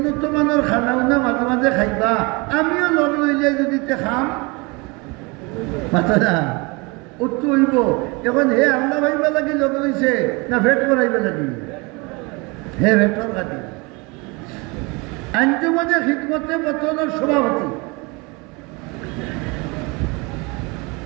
মানের খানা উনা মাঝে মাঝে খাইবা আমিও লগ লইলে যদি খাম মাথা না উত্তর হইব এখন হে আল্লাহ ভাইবা লাগি লগ লইছে না ভেট করাইবা লাগি হে ভেটর কাটি আঞ্জুমানে খিদমতে বতনের সভাপতি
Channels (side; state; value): left; quieter; 27.7 dB